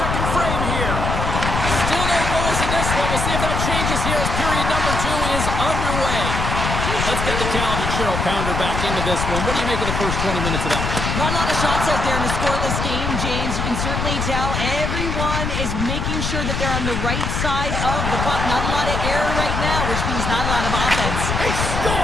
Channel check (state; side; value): noise; left; rumble, 2 dB below the sound